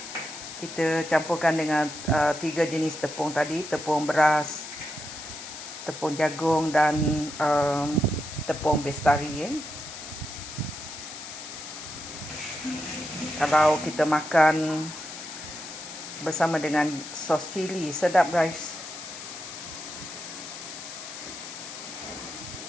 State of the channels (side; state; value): left; noise; hiss, 11 dB below the sound